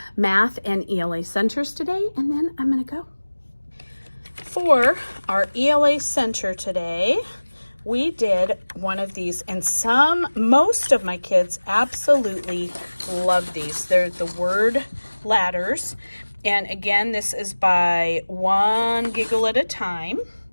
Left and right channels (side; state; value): both; inverted; correlation -1.00